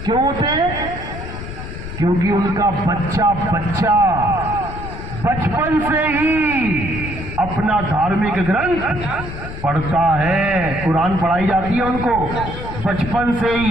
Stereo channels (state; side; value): noise; left; rumble, 9 dB below the sound